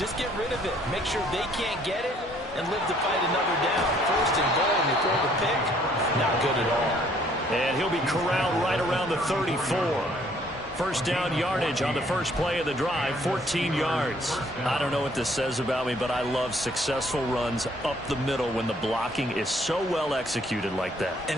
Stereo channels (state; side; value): normal; both; correlation 0.62